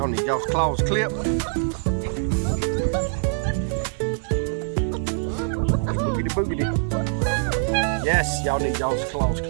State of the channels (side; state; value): left; silent; digital silence